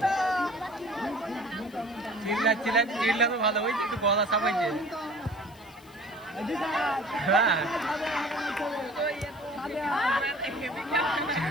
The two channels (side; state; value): left; noise; hiss, 26 dB below the sound